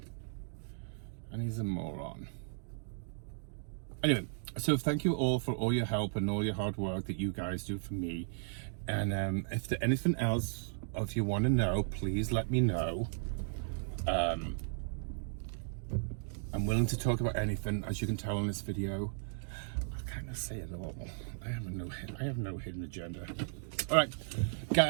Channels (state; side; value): silent; left; digital silence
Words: And he's a moron. Anyway, so thank you all for all your help and all your hard work that you guys do for me. And if there's anything else, or if you want to know, please let me know. I'm willing to talk about anything, as you can tell in this video. I kind of say it all. I have no hidden agenda. All right,